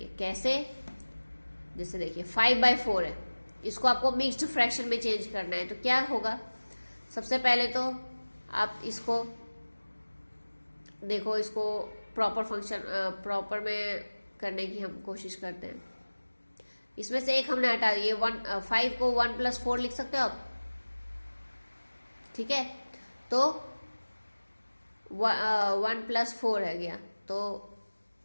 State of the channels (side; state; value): both; inverted; correlation -1.00